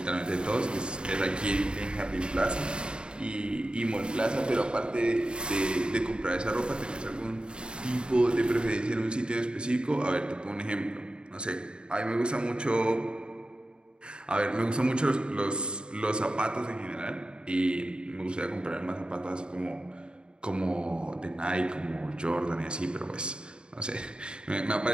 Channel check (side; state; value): left; late; 0.051 ms